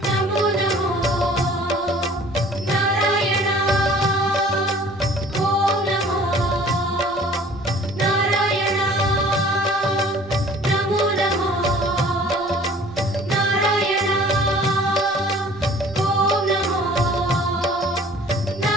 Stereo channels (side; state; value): both; normal; correlation 0.50